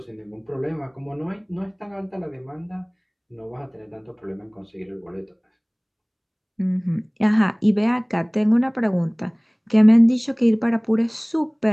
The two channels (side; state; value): both; identical; correlation 1.00